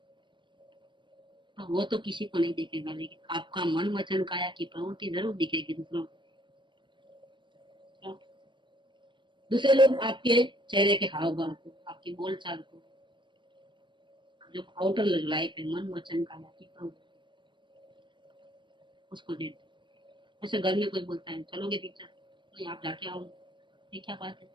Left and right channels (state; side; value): late; left; 0.23 ms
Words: तो वो तो किसी को नहीं देखेगा, लेकिन आपका मन वचन काया की प्रवृत्ति जरूर दिखेगी दूसरों को। दूसरे लोग आपके चेहरे के हाव भाव को, आपकी बोलचाल को, जो आउटर लाइफ है, मन वचन काया की प्रवृत्ति, उसको देखते। ऐसे घर में कोई बोलता है चलोगे पिक्चर, नहीं आप जाके आओ, ये क्या बात है।